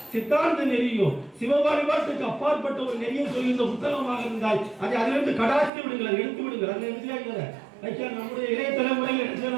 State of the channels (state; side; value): drops out; left; at 5.7 s